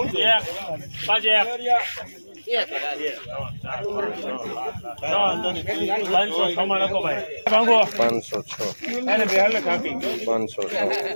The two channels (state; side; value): inverted; both; correlation -1.00